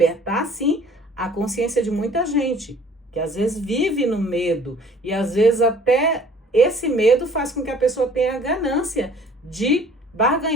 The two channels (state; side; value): normal; both; correlation 0.53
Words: sim, a consciência de muita gente, que às vezes vive no medo, e às vezes até esse medo faz com que a pessoa tenha a ganância de